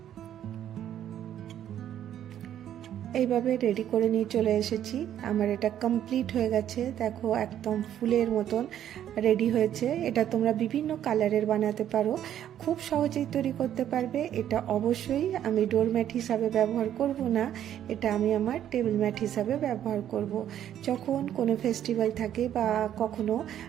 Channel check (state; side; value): quieter; left; 10.8 dB